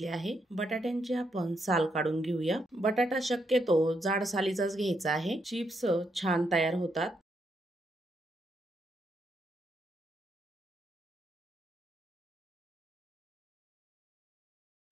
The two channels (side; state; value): both; normal; correlation 0.78